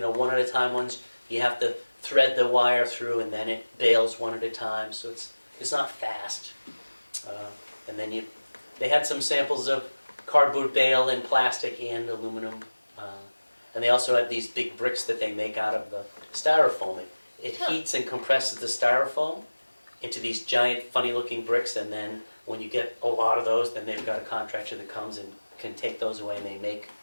at a time ones, you have to thread the wire through, and then it bales 1 at a time, so it's not fast. And then they had some samples of cardboard bale and plastic and aluminum. And they also have these big bricks that they make out of the styrofoam. It heats and compresses the styrofoam into these giant, funny-looking bricks, and then when you get a lot of those, then they've got a contractor that comes and can take those away, and they make,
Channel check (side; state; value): both; inverted; correlation -1.00